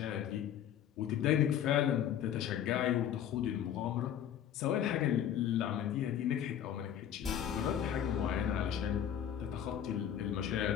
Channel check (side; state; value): right; quieter; 9.9 dB